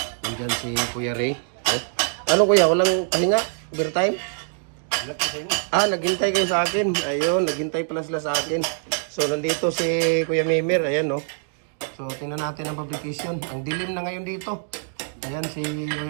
Ayan si Kuya Ray. Oh. Ano kuya? Walang pahinga? Overtime? Naghintay kayo sa akin. Ayun, naghintay pala sila sa akin. So, nandito si Kuya Mimir. Ayan, no. So, tingnan natin ang fabrication. Ang dilim na ngayon dito. Ayan si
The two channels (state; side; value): silent; left; digital silence